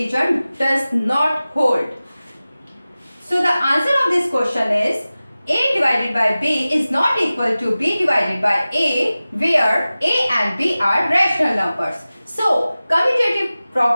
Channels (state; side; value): inverted; both; correlation -0.97